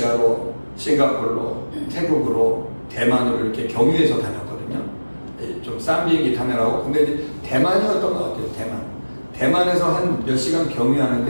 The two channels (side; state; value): both; inverted; correlation -1.00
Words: 싱가포르로, 태국으로, 대만으로 이렇게 경유해서 다녔거든요. 좀 싼 비행기 타느라고. 근데 이제 대만이었던 것 같아요. 대만에서 한 몇 시간